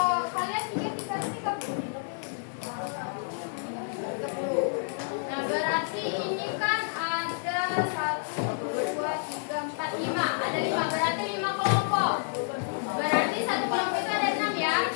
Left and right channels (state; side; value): silent; right; 58 dB below the other